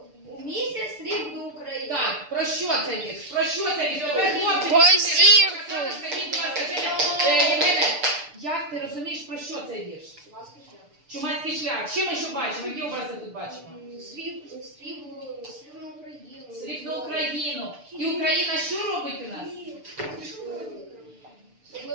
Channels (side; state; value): left; late; 6.8 ms